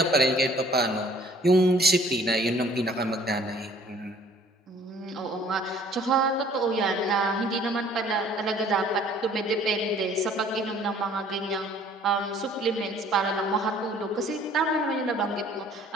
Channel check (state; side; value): normal; both; correlation 0.56